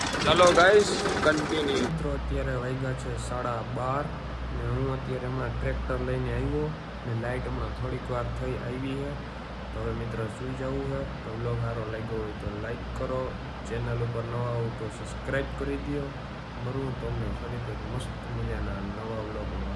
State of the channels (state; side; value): identical; both; correlation 1.00